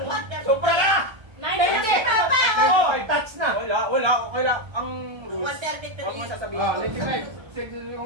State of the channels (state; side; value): late; left; 1.3 ms